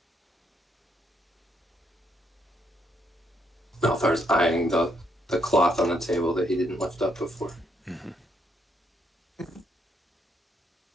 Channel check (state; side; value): normal; both; correlation 0.75